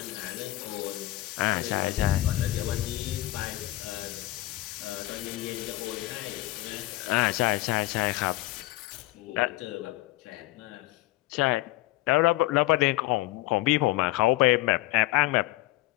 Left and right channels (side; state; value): right; quieter; 18.3 dB